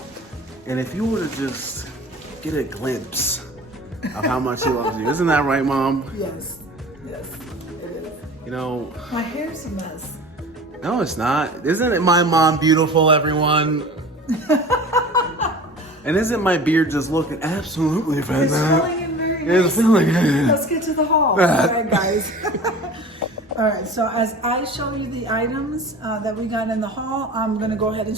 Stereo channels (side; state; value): both; normal; correlation 0.40